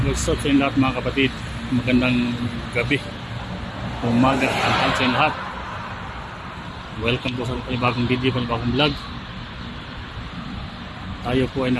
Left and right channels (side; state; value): both; identical; correlation 1.00